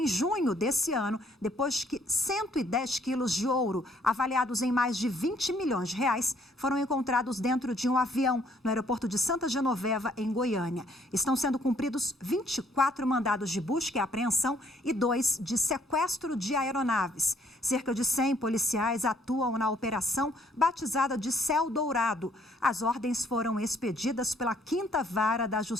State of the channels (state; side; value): normal; both; correlation 0.65